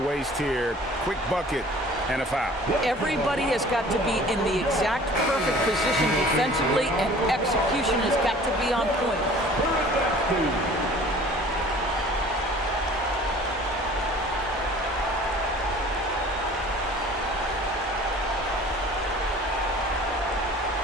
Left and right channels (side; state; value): both; normal; correlation 0.48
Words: waste here. Quick bucket and a foul. Everybody has got to be in the exact perfect position defensively, and execution has got to be on point.